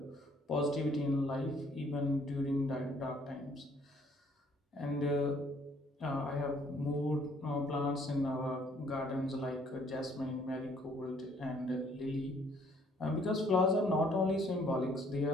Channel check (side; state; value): both; normal; correlation 0.62